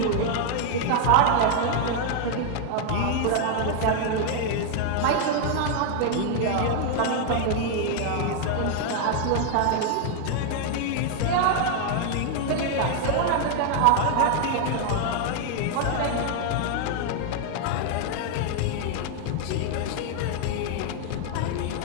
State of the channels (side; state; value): both; different; correlation 0.00